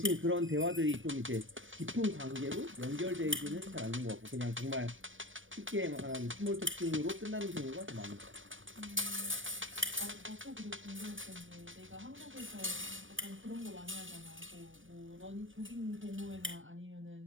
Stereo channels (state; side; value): late; left; 0.57 ms